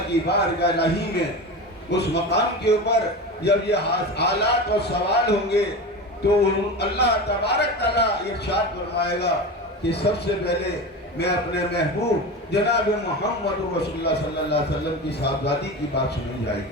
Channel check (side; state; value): both; normal; correlation 0.26